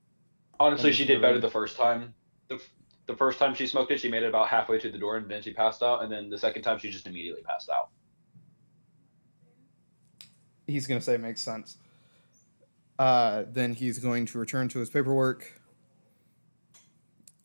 Honestly, she did better the first time. the first time she smoked it, she made it about halfway to the door, and then she passed out. And then the second time, she just immediately passed out. He's going to say makes sense. Then he's going to return to his paperwork.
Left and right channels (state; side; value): inverted; both; correlation -1.00